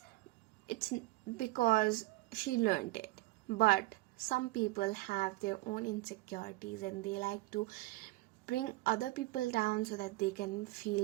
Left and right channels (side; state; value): left; quieter; 20.4 dB